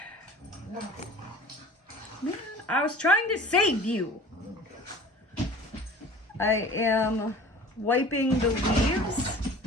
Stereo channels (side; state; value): both; normal; correlation 0.43